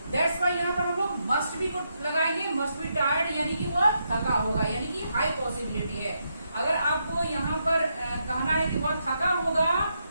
That's why यहाँ पर हम लोग मस्ट बी को लगाएंगे, मस्ट बी टायर्ड, यानी कि वह थका होगा, यानी कि हाई पॉसिबिलिटी है। अगर आपको यहाँ पर कहना है कि वह थका होगा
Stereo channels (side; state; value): both; inverted; correlation -0.81